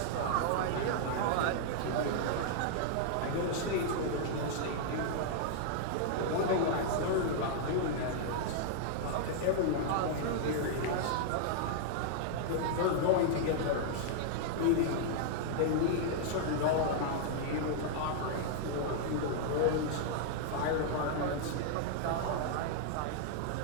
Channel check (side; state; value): both; different; correlation -0.01